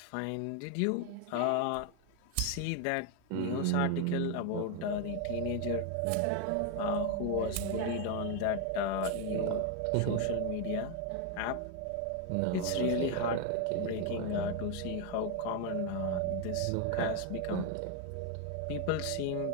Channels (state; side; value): different; both; correlation 0.01